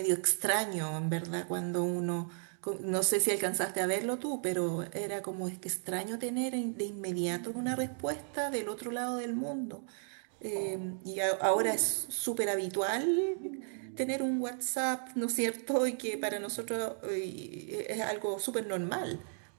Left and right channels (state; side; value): silent; left; 55 dB below the other